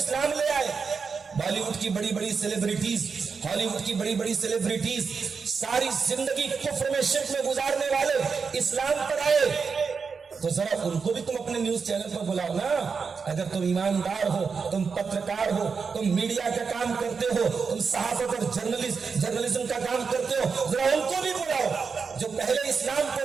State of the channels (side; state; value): left; quieter; 5.4 dB